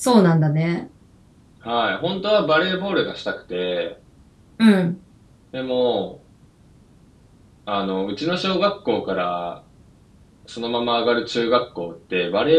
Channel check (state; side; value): identical; both; correlation 1.00